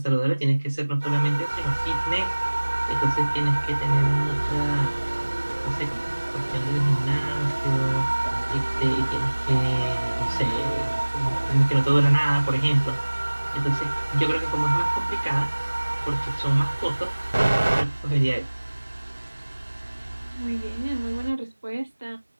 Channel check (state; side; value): inverted; both; correlation -1.00